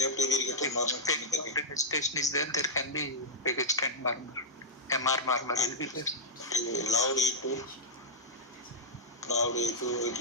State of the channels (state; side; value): normal; both; correlation -0.07